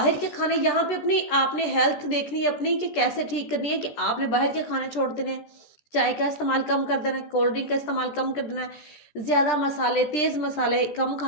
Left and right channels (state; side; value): late; right; 13 ms